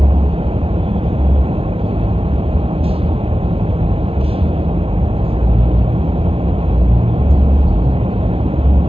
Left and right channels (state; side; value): late; left; 0.27 ms